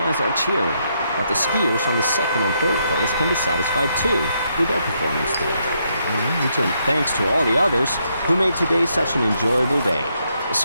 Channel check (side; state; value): both; inverted; correlation -0.77